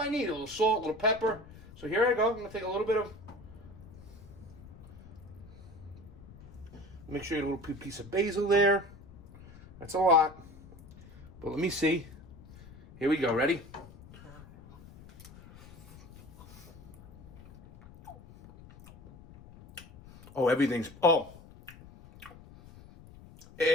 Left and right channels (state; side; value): noise; left; rumble, 19 dB below the sound